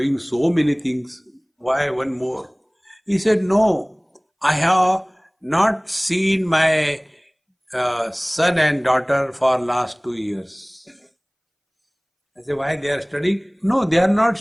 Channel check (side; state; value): both; identical; correlation 1.00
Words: so many things. Why one more? He said, no, I have not seen my son and daughter for last 2 years. I said, why they are studying? No, they are not